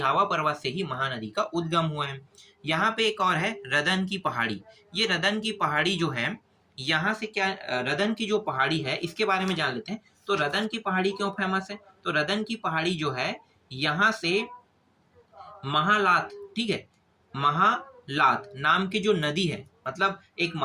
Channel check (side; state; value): both; identical; correlation 1.00